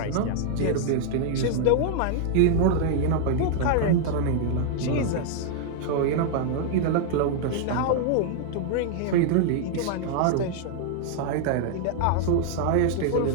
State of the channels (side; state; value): both; different; correlation 0.00